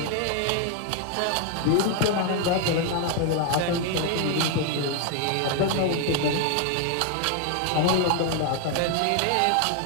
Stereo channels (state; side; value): different; both; correlation 0.01